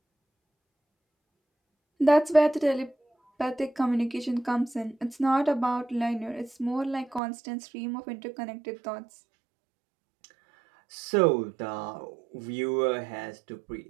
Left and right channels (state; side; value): drops out; left; at 7.2 s